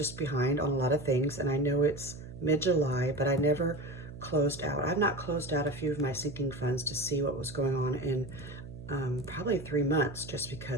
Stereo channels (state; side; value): noise; right; hum, 13 dB below the sound